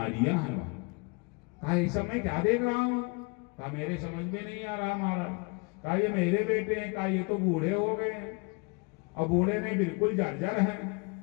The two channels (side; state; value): right; quieter; 31.6 dB